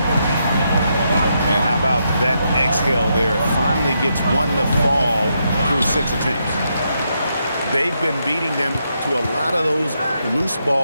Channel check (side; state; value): both; inverted; correlation -0.81